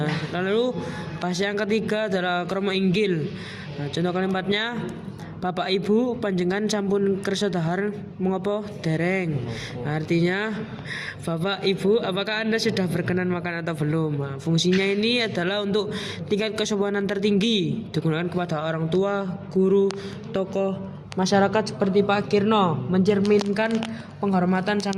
lalu bahasa yang ketiga adalah krama inggil. Nah, contoh kalimatnya Bapak Ibu panjenengan sampun kersa dahar mengopo dereng. Nah, artinya Bapak Ibu apakah Anda sudah berkenan makan atau belum. Nah, fungsinya ini adalah untuk tingkat kesopanan tertinggi, digunakan kepada orang tua, guru, tokoh masyarakat seperti Pak Kirno, mencerminkan penghormatan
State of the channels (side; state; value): both; identical; correlation 1.00